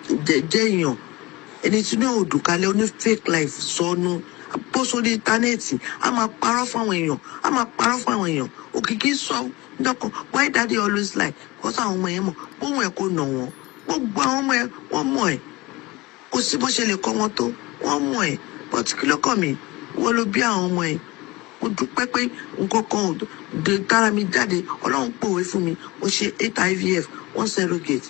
jẹ́ èèyàn. Ẹni tí ní òdùkalẹ̀ oní fake life sọnù. Bó sórí íńtánẹ́ẹ̀tì a máa parọ́ fún àwọn èèyàn. Òkìkí sọ dọ́kan why daddy always lie because àwọn ọmọ yẹn mọ̀ bóun ẹ̀ kò nà wọ́n. Gbogbo àwọn ọmọ ẹ̀ wọ́n mọ̀ ẹ̀. Kò sí bó ṣe lè kọ́ wọn tó wọ́n mọ̀ ẹ̀. But kí ló kàn mí? Wọ́n ló bí àwọn ọmọ ẹ̀. Mo dúpẹ́ pé nǹkan kan ò dé tára mi jáde. Ọlọ́run pòwe fún mi. Mo ṣe 8 IVF 1 surrogate.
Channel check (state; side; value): quieter; right; 21.7 dB